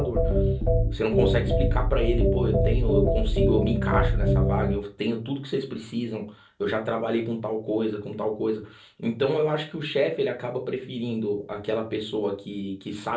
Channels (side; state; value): both; identical; correlation 1.00